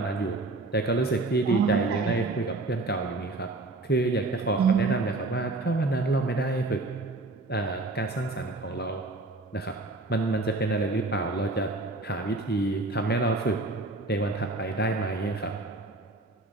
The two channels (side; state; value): left; quieter; 3.1 dB